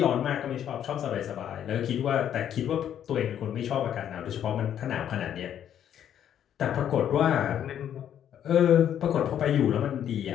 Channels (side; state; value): right; quieter; 9.9 dB